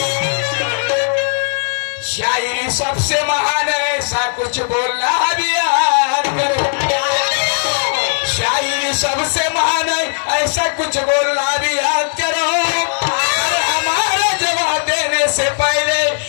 शायरी सबसे महान है ऐसा कुछ बोलना भी याद करो. शायरी सबसे महान है ऐसा कुछ बोलना भी याद करो. और हमारा जवाब देने से पहले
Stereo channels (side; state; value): right; silent; 62 dB below the other